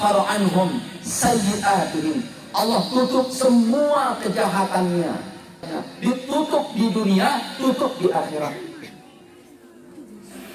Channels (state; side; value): identical; both; correlation 1.00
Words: anhum sayyi'atihim, Allah tutup semua kejahatannya, ditutup di dunia, tutup di akhirat.